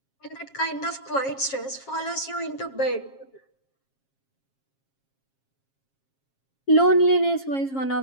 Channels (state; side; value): late; right; 7.4 ms